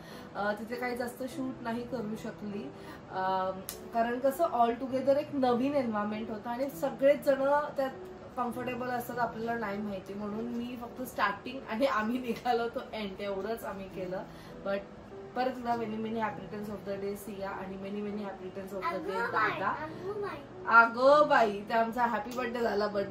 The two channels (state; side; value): identical; both; correlation 1.00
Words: तिथे काही जास्त शूट नाही करू शकली कारण कसं ऑल टुगेदर एक नवीन एन्व्हायरमेंट होतं आणि सगळेच जण त्यात कम्फर्टेबल असतात आपल्याला नाही माहिती, म्हणून मी फक्त स्टार्टिंग आणि आम्ही निघालो तो एंड एवढंच आम्ही केलं. बट परत एकदा many many happy returns of the day Siya आणि many many happy returns of the day दादा. अगं बाई, ते आमचा हॅपी बर्थडे झाला बट